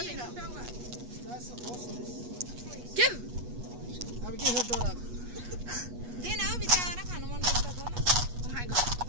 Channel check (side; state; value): left; late; 8.3 ms